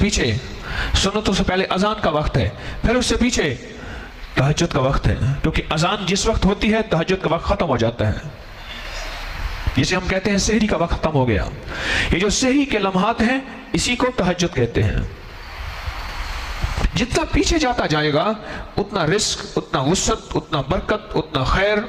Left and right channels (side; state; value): both; identical; correlation 1.00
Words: سنتوں سے پہلے اذان کا وقت ہے، پھر اس سے پیچھے تہجد کا وقت ہے. کیونکہ اذان جس وقت ہوتی ہے تہجد کا وقت ختم ہو جاتا ہے، جسے ہم کہتے ہیں سحری کا وقت ختم ہو گیا. یہ جو سحری کے لمحات ہیں اسی کو تہجد کہتے ہیں. جتنا پیچھے جاتا جائے گا اتنا رزق، اتنا وسعت، اتنا برکت، اتنا خیر